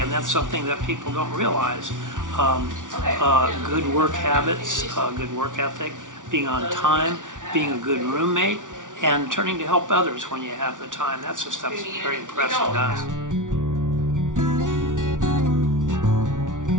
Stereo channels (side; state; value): left; late; 0.87 ms